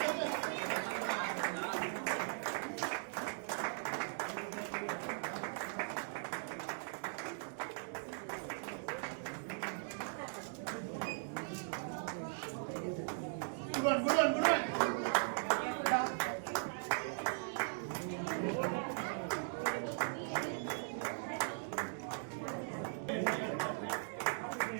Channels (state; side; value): silent; left; digital silence